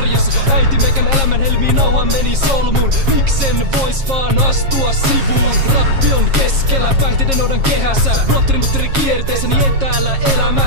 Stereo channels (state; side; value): late; left; 7.4 ms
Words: Äiti meikän elämän helmiin nauha meni solmuun. Miksen vois vaan astua sivuun? Rappi on keskellä, päihteiden odan kehässä. Blotteri kierteessäni etäällä